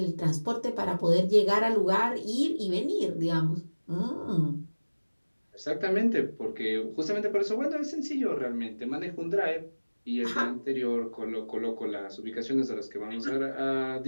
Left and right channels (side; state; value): both; inverted; correlation -1.00